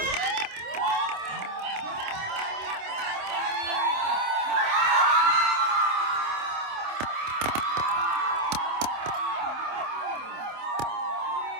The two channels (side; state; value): left; late; 27 ms